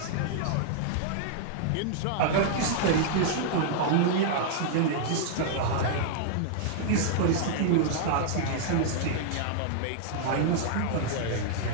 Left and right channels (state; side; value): different; both; correlation -0.01